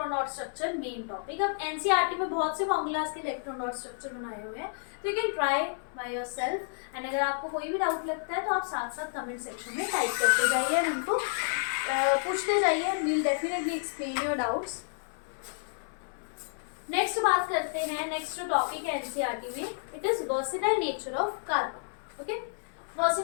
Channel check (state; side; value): silent; right; 57 dB below the other